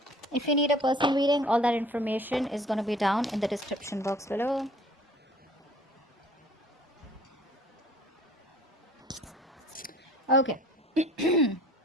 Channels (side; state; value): both; normal; correlation 0.51